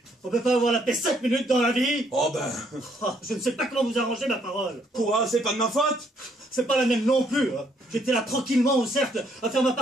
On peut pas avoir la paix 5 minutes dans la vie. Oh ben... Ah, je ne sais pas comment vous arranger ma parole. Quoi? C'est pas de ma faute? C'est pas la même non plus. Hein. J'étais là tranquillement au cercle à faire ma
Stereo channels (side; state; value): both; normal; correlation 0.69